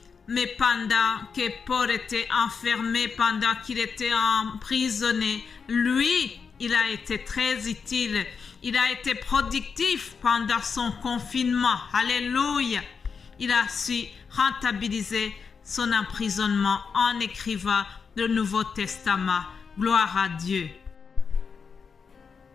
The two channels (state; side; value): quieter; right; 5.7 dB